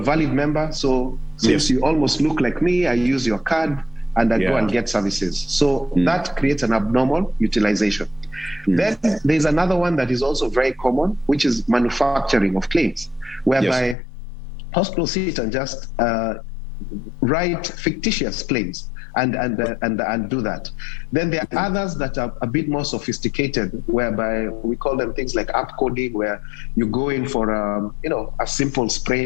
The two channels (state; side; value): drops out; right; at 14.0 s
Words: valid member, so since you almost look like me, I use your card and I go and get services. So that creates an abnormal utilization. Then there's another one that is also very common, which is manufacturing of claims, whereby hospitals sit and just write fictitious claims and do that. Then there are others that are a bit more sophisticated, whereby we call them things like app coding, where you go in for a simple